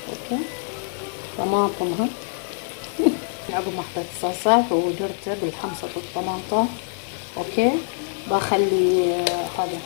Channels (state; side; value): silent; right; 62 dB below the other